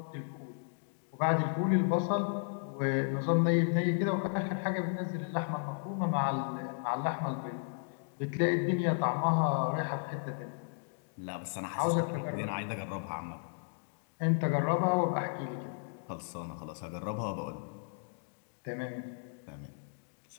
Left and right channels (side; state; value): right; silent; digital silence